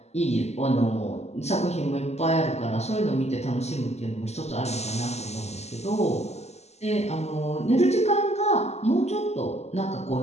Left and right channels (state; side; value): late; right; 0.32 ms